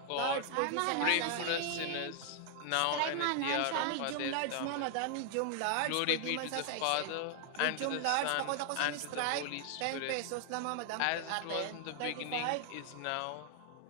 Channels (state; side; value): different; both; correlation 0.00